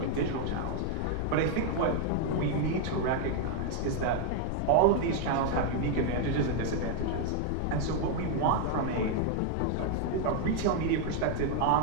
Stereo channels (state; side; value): different; both; correlation 0.00